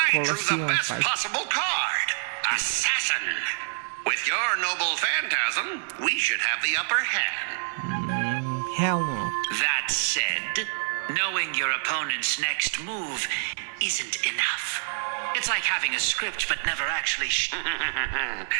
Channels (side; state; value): left; silent; digital silence